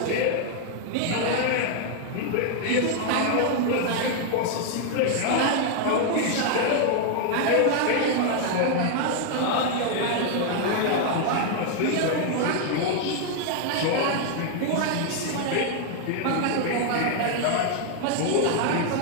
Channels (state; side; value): different; both; correlation 0.00